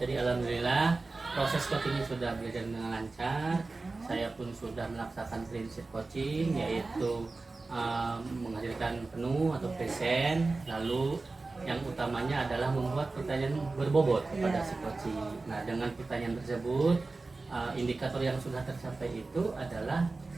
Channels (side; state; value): left; quieter; 3.6 dB